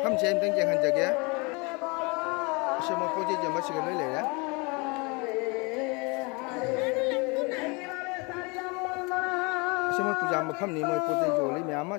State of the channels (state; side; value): quieter; right; 29.3 dB